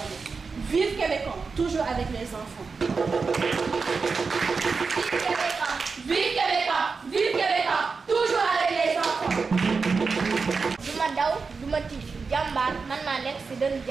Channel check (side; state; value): left; quieter; 4.8 dB